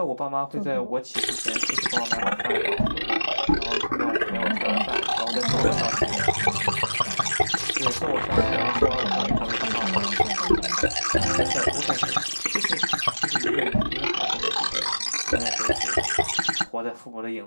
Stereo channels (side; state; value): both; inverted; correlation -1.00